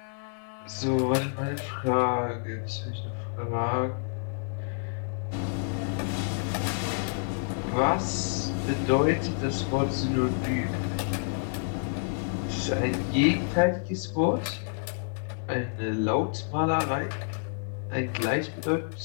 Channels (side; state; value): right; silent; digital silence